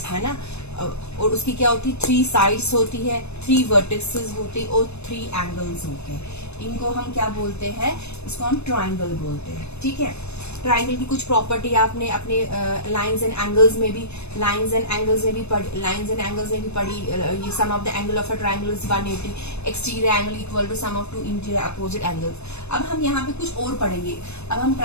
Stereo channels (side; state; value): right; late; 0.81 ms